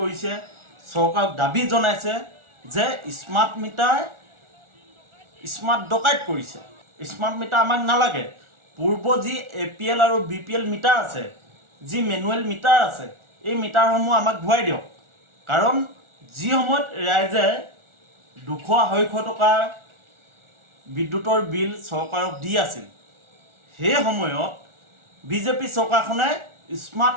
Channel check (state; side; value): late; left; 1.4 ms